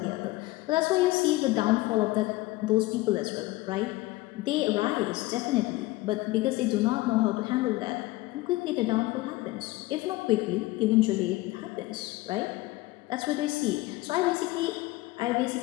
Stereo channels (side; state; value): right; quieter; 19.6 dB